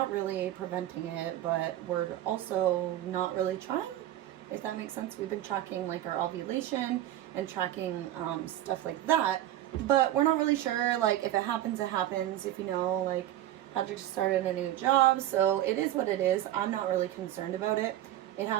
really preventing it, but we're also not really trying, if that makes sense. We've been tracking like our ovulation and tracking stuff like that, but we're not really sure, like, if it happens, it happens. If you know, like, Patrick started a new job, so it is what it is. I'm not really concerned about it. It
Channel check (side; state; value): left; quieter; 13.2 dB